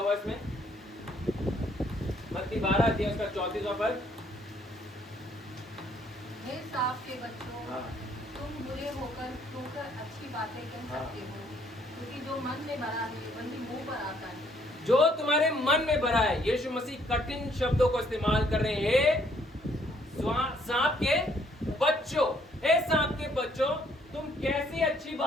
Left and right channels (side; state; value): both; normal; correlation 0.65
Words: इसमें? मत्ती 12 अध्याय उसका 34वां पद। हे सांप के बच्चों, तुम बुरे होकर अच्छी बातें कह सकते हो, क्योंकि जो मन में भरा है वही मुंह पर आता है। जो तुम्हारे मन में भरा है, यीशु मसीह कठिन शब्दों को इस्तेमाल कर रहे हैं। सांप के बच्चों, हे सांप के बच्चों, तुम कैसी अच्छी